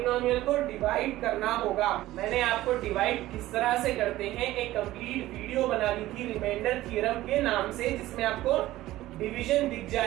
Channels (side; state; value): left; quieter; 15.9 dB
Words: को डिवाइड करना होगा। मैंने आपको डिवाइड किस तरह से करते हैं एक कंप्लीट वीडियो बना दी थी रिमाइंडर थ्योरम के नाम से, जिसमें आपको डिवीजन दिख